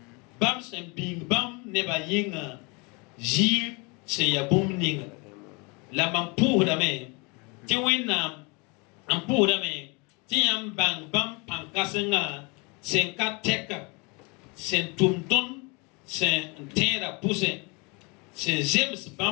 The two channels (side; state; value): right; quieter; 29.6 dB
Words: Bam sembing bam neba yinga. Jir se yabum ninga. La mampu dame. Ti winam ampu dame. Ti yam bang bam pankasenga. Senka teka. Sen tumton. Sen tera pousse. Sen James